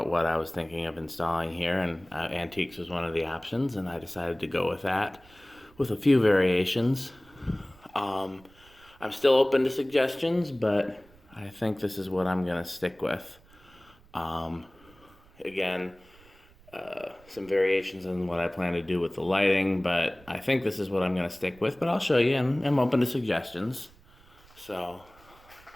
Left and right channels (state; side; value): noise; right; rumble, 27 dB below the sound